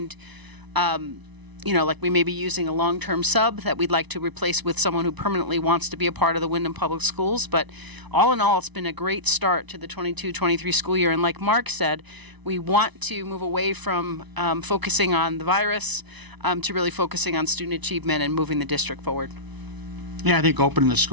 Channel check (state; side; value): late; left; 1.0 ms